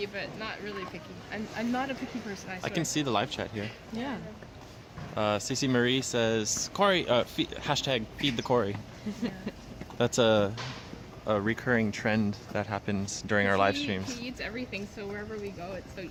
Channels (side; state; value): both; identical; correlation 1.00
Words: but not really picky. I'm not a picky person, I I swear. can see the live chat here. Yeah. Cece Marie says, Corey, hashtag feed the Corey. That's a recurring trend that happens during our live streams. He eats everything, so wherever we go, it's so